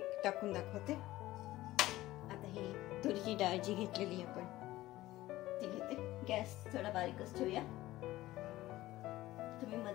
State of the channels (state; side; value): quieter; right; 16.6 dB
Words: टाकून दाखवते। आता ही तुरीची डाळ जी घेतलेली आपण ती घेते। गॅस थोडा बारीकच ठेवूया। तुम्ही